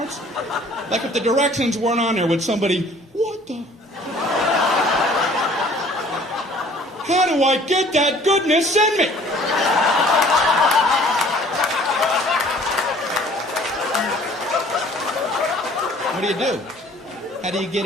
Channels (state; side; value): normal; both; correlation 0.53